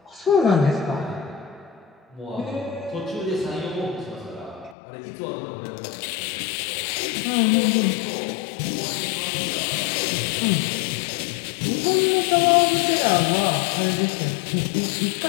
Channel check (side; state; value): right; drops out; at 4.8 s